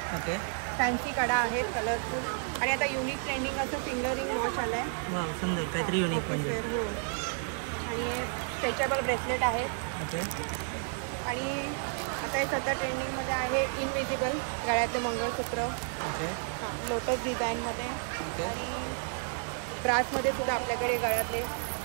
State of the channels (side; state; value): left; silent; 57 dB below the other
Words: ओके. फॅन्सी कडा आहेत कलरफुल आणि आता युनिक ट्रेंडिंग असं फिंगरिंग वॉच आलं आहे. वा, सुंदर, काहीतरी युनिक म्हणजे. आणि स्ट्रेचेबल ब्रेसलेट आहे. ओके. आणि काही सध्या ट्रेंडिंगमध्ये आहे इनविजिबल गळ्याचं मंगळसूत्र. ओके. लोटस डिझाईनमध्ये. ओके. आणि ग्रासमध्ये सुद्धा आपल्याकडे गळ्यातले